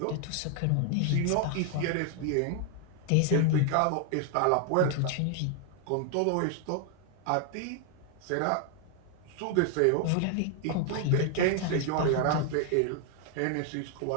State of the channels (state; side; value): different; both; correlation 0.00